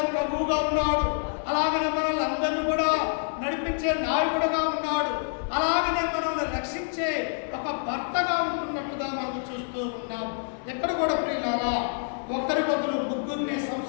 ప్రభువుగా ఉన్నాడు, అలాగనే మనల్ని అందరినీ కూడా నడిపించే నాయకుడుగా ఉన్నాడు, అలాగనే మనల్ని రక్షించే ఒక భర్తగా ఉంటున్నట్టుగా మనం చూస్తూ ఉన్నాం. ఎక్కడ కూడా ప్రియులారా, ఒక్కరి బదులు ముగ్గురిని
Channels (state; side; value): silent; right; digital silence